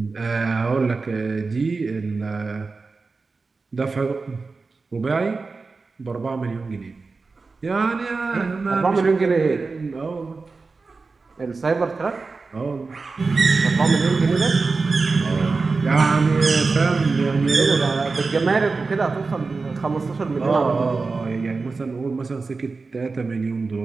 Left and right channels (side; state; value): left; quieter; 4.1 dB